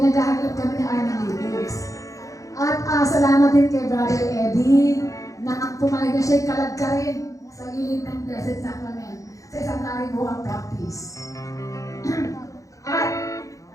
kami ng aming lyrics. At salamat din kay Brother Eddie na pumayag na siya'y kalagkarin sa gilid ng Blessed Sacrament sa isang karibuang practice. At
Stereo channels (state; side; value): late; right; 0.16 ms